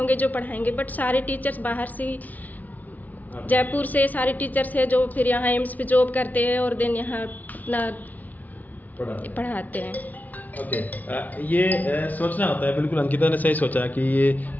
जो पढ़ाएंगे, बट सारे टीचर्स बाहर से ही, जयपुर से सारे टीचर्स हैं जो फिर यहाँ एम्स पे जॉब करते हैं और देन यहाँ अपना पढ़ाते हैं। ओके, ये सोचना होता है, बिल्कुल अंकिता ने सही सोचा कि ये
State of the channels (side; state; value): right; late; 0.077 ms